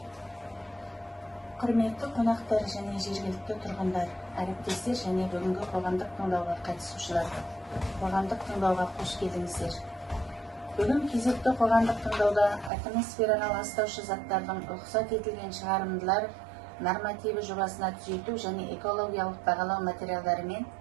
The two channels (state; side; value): drops out; left; at 12.7 s